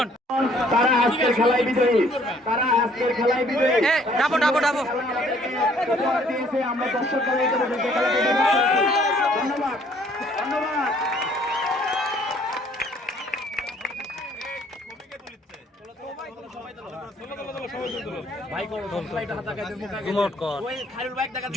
তারা আজকের খেলায় বিজয়ী, তারা আজকের খেলায় বিজয়ী। ডাবো ডাবো ডাবো। উপহার দিয়েছে, আমরা দর্শকরা এই খেলাকে ধন্যবাদ, ধন্যবাদ।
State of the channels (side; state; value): both; normal; correlation 0.61